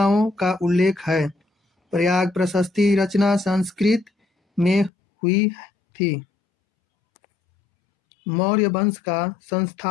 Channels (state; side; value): drops out; right; at 4.9 s